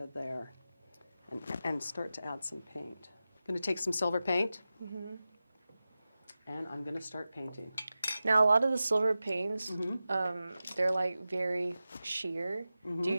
of there and start to add some paint. I'm going to take some silver paint and I'm going to start painting. Now, a lot of the silver paints, they're like very sheer. Do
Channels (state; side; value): inverted; both; correlation -0.94